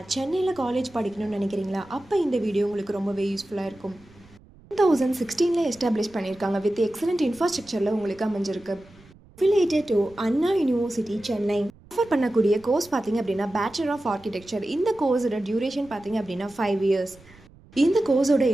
சென்னையில் காலேஜ் படிக்கணும்னு நினைக்கிறீங்களா? அப்போ இந்த வீடியோ உங்களுக்கு ரொம்பவே யூஸ்ஃபுல்லாக இருக்கும். 2016 எஸ்டாப்ளிஷ் பண்ணியிருக்காங்க. வித் எக்ஸலண்ட் இன்ஃப்ராஸ்ட்ரக்சரில் உங்களுக்கு அமைஞ்சிருக்கு. Affiliated to Anna university Chennai. Offer பண்ணக்கூடிய கோர்ஸ் பார்த்தீங்க அப்படின்னா பேச்சுலர் ஆஃப் ஆர்கிடெக்சர். இந்த கோர்ஸோட டியூரேஷன் பார்த்தீங்க அப்படின்னா 5 years. இந்த கோர்ஸோட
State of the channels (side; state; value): right; noise; rumble, 25 dB below the sound